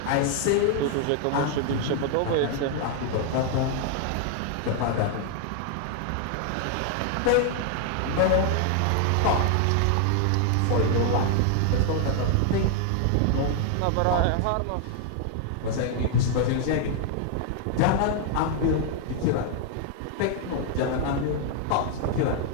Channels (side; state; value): both; different; correlation 0.00